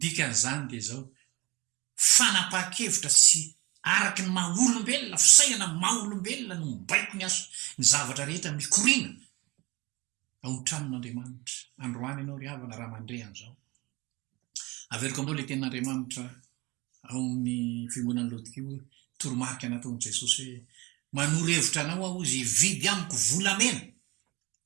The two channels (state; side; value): quieter; left; 23.1 dB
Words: dikan'izany dia zao fanapa-kevitra sy araky ny maha-olombelona fisainana maha-olombelona no mibaiko ny aso ny zavatra rehetra mikorina ao ny-tranon'andriamanitra androany ianao ry havana raha mandre an'izao averiko aminao le tenin'andriamanitra ao amin'ny fiangonan'ny laodikio toromarika nataon'i jesosy hoe manoro-hevitra anao aho izy vidy amiko volamena